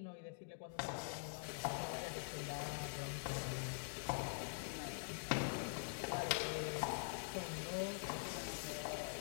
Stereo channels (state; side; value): silent; right; digital silence